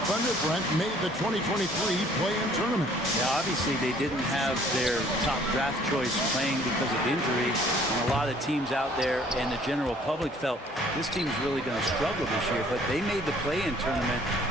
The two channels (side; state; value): both; normal; correlation 0.57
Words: Thunder, Brent, made the 2023 play-in tournament. Yeah, obviously they didn't have their top draft choice playing because of injury. And a lot of teams out there and the general public felt this team's really going to struggle this year. But they made the play-in tournament